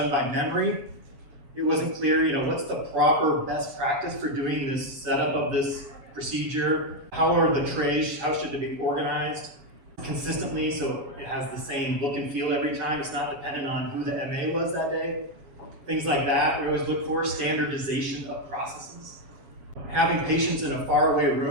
by memory. It wasn't clear, what's the proper best practice for doing this setup of this procedure? How are the trays, how should they be organized consistently so it has the same look and feel every time? It's not dependent on who the MA was that day. Things like that, we always look for standardization of processes. Having patients in a faraway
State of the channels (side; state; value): left; late; 7.2 ms